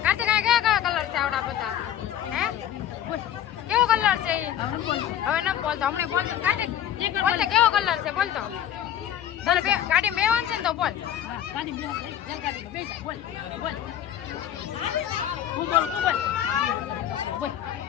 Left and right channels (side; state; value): right; quieter; 10.7 dB